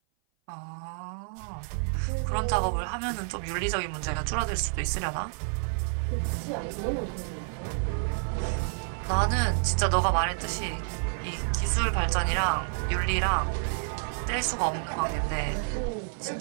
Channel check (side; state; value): left; silent; 56 dB below the other